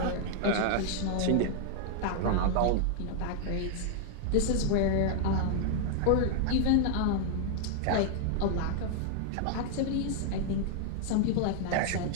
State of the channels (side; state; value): both; different; correlation 0.00